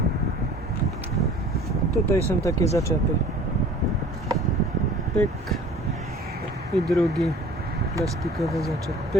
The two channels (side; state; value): both; normal; correlation 0.47